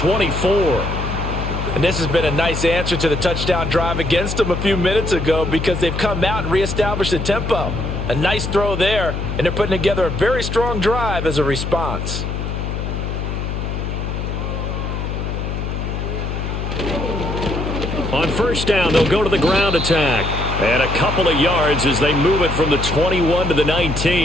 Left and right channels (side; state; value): left; noise; hum, 4 dB below the sound